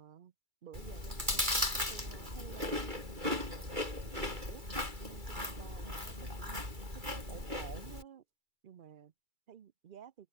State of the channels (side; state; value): left; late; 2.3 ms